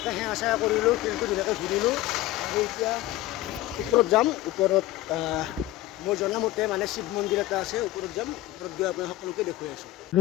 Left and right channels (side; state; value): right; quieter; 16.0 dB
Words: সেৱা চেৱা কৰিলোঁ শিলটো ধুনীয়াকৈ ঘূৰিলোঁ আৰু এতিয়া ওপৰত যাম ওপৰত মই জনামতে মানে শিৱ মন্দিৰ এটা আছে ওপৰত যাম ওপৰত গৈ আপোনাৰ সকলোকে দেখুৱাই আছোঁ আৰু